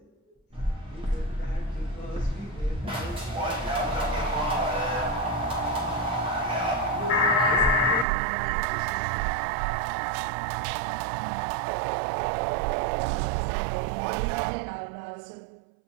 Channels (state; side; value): drops out; left; at 8.1 s